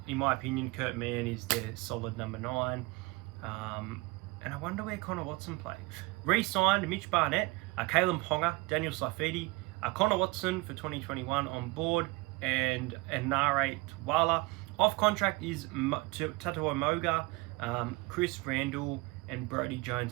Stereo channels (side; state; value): left; quieter; 24.5 dB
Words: In my opinion, Kurt Mann is their solid number 9. And I wonder where Connor Watson plays. Re-signed Mitch Barnett, Caleb Ponga, Daniel Saifidi, Connor Watson for 2021 on board, and Nare Twala. Off contract is Tatua Moga, Chris Randall, and Brody